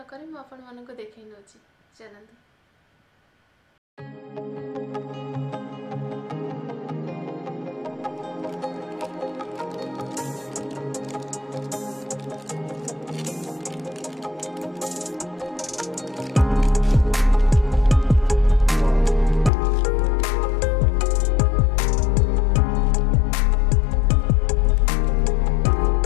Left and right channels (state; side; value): drops out; right; at 19.5 s